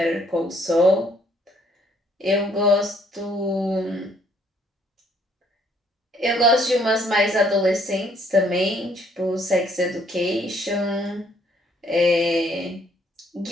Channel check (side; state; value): both; normal; correlation 0.65